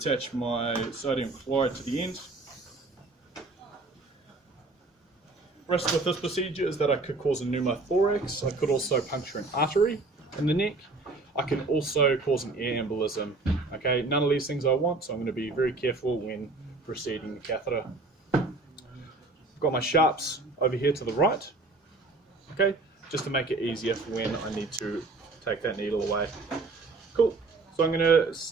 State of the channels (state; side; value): quieter; left; 3.3 dB